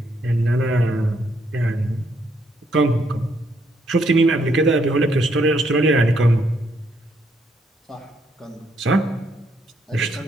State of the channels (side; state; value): both; normal; correlation 0.73